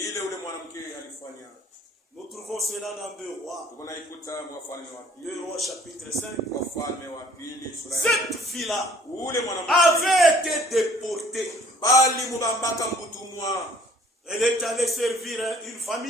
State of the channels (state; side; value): normal; both; correlation 0.56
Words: ule mwanamke alifanya. Nous trouvons cela dans 2 Rois. Tuko naikuta Wafalme wa 2 pili, Rois chapitre 5. Wafalme wa pili sura ya Cette fille-là ule mwanamke avait été déportée. bali mubambaka mbutumwa Elle est allée servir une